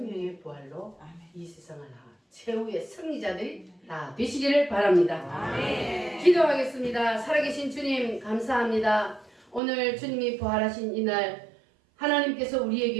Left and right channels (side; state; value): left; drops out; at 9.6 s